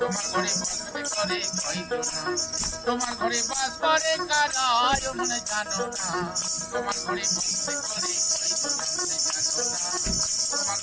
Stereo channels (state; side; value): identical; both; correlation 1.00